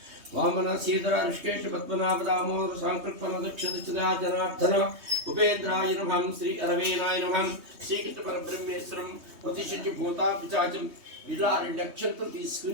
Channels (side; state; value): left; late; 3.2 ms